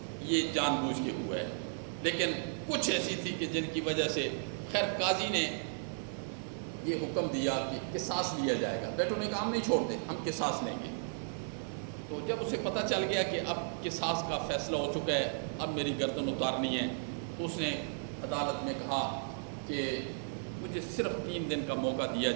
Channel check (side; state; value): left; silent; digital silence